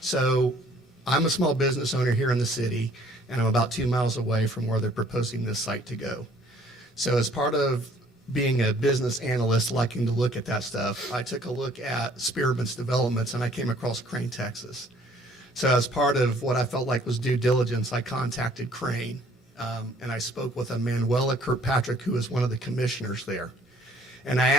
So I'm a small business owner here in the city, and I'm about 2 miles away from where they're proposing this site to go. So as part of being a business analyst, liking to look at that stuff, I took a look at Spearmint's developments, and I came across Crane, Texas. So as part of what I felt like was due diligence, I contacted Crane, and I spoke with a Manuela Kirkpatrick, who is one of the commissioners there. And I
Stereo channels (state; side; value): normal; both; correlation 0.59